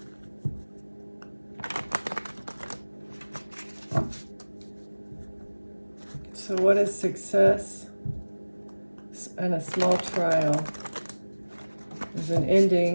So what is success? and a small trial. There's an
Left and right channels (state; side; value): inverted; both; correlation -1.00